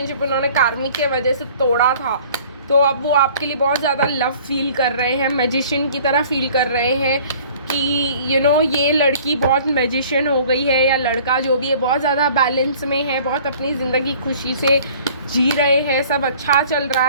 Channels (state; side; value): inverted; both; correlation -0.51